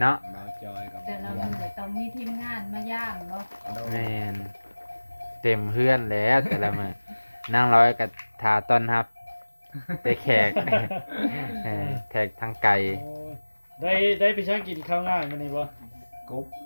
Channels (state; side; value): inverted; both; correlation -1.00